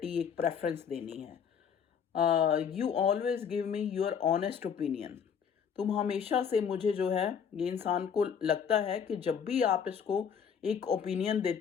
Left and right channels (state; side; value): quieter; right; 7.3 dB